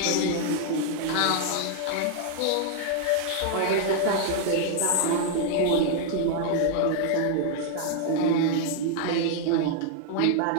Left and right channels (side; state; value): both; different; correlation 0.00